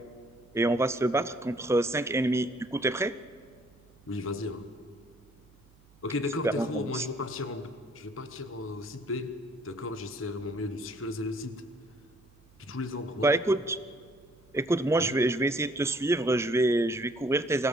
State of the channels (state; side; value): noise; right; hum, 29 dB below the sound